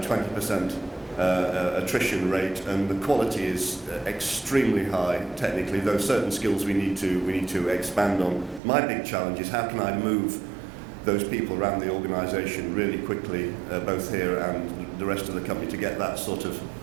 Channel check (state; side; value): drops out; left; at 8.6 s